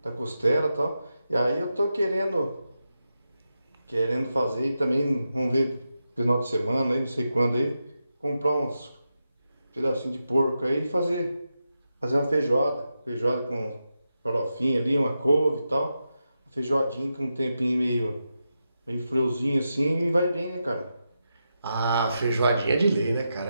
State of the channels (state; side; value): inverted; both; correlation -0.88